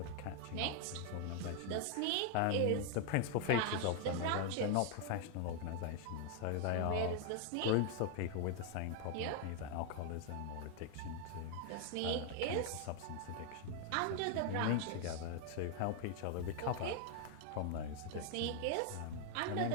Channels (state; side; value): different; both; correlation 0.00